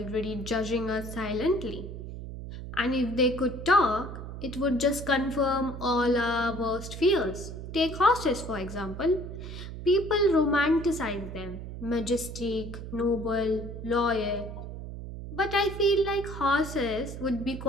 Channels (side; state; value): right; noise; hum, 9 dB below the sound